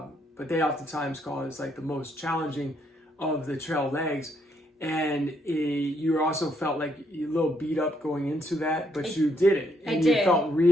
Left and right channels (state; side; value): normal; both; correlation 0.73